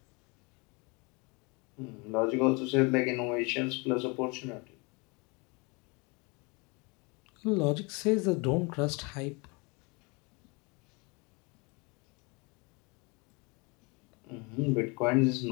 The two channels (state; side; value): quieter; right; 29.2 dB